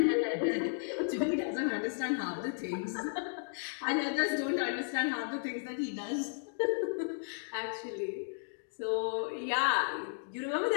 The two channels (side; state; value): right; silent; digital silence